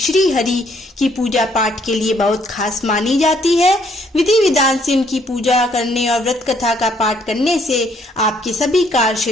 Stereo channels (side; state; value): both; normal; correlation 0.67